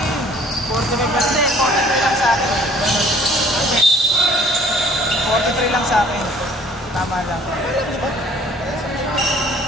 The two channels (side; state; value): both; normal; correlation 0.56